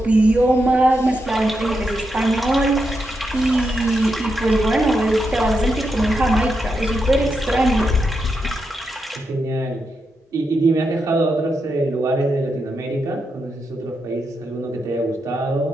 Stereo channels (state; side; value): normal; both; correlation 0.85